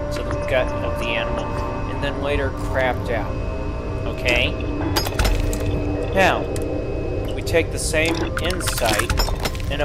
the gut of the animal and then later crapped out. Okay? Now, we take the same insight and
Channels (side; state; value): both; identical; correlation 1.00